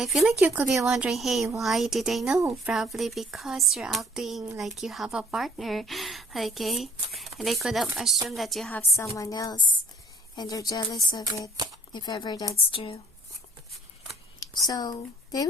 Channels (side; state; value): both; normal; correlation 0.56